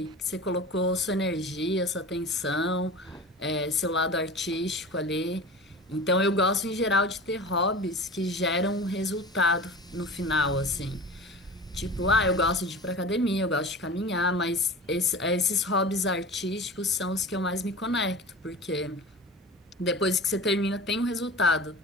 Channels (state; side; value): normal; both; correlation 0.35